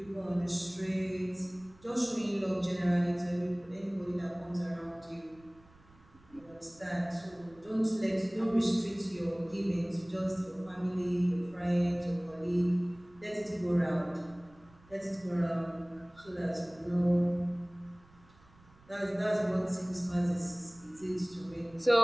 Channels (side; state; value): right; noise; rumble, 27 dB below the sound